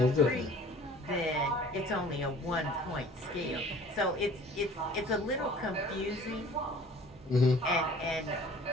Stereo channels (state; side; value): normal; both; correlation 0.48